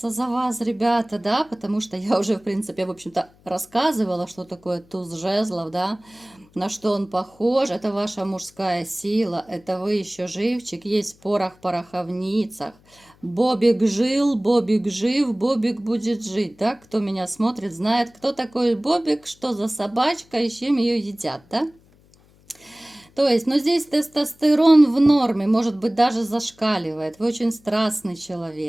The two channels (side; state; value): left; noise; hum, 30 dB below the sound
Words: за вас, ребята, да, потому что я уже, в принципе, в общем-то, рассказывала, что такое туз жезлов, да, на что он похож. Это ваша мужская сила, это вы еще живчик, есть в пороховницах. Бобик жил, Бобик жив, Бобик будет жить, да, кто меня смотрит, знает, кто такой Бобик, что за собачка и с чем ее едят, да. То есть, ну здесь тестостерон в норме, может быть, даже зашкаливает. Вы очень страстный